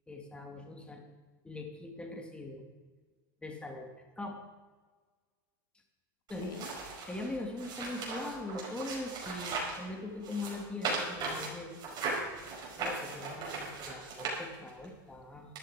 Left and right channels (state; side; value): normal; both; correlation 0.31